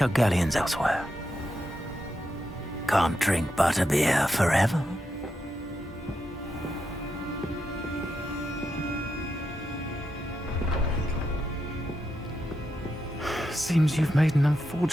our galleons elsewhere. Can't drink butterbeer forever. Seems you've made an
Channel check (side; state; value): both; normal; correlation 0.85